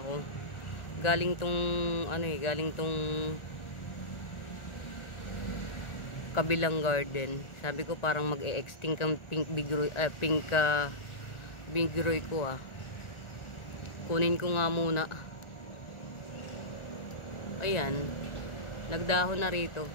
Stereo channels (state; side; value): late; right; 1.4 ms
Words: ko, galing tong kabilang garden. Sabi ko parang mag-e-extinct ang pink bigroy ko ah. Kunin ko nga muna. Ayan. Nagdahon na rito.